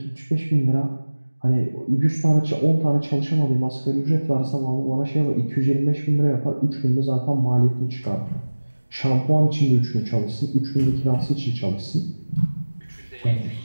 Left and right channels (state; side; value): inverted; both; correlation -1.00